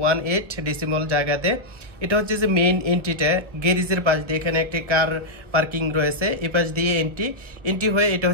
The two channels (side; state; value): left; late; 1.0 ms